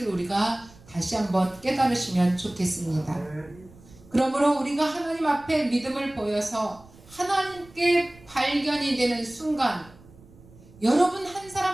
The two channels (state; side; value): noise; right; rumble, 24 dB below the sound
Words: 우리가 다시 한번 깨달으시면 좋겠습니다. 그러므로 우리가 하나님 앞에 믿음을 보여서 하나님께 발견이 되는 순간, 여러분 한